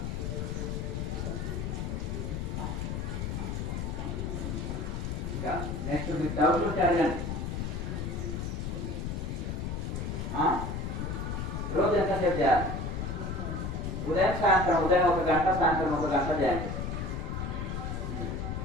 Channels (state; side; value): noise; left; rumble, 3 dB below the sound